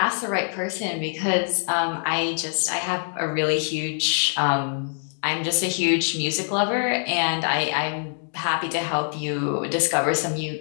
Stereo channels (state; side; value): silent; right; digital silence